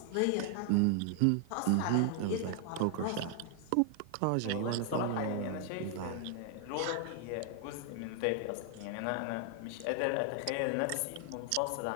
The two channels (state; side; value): different; both; correlation 0.00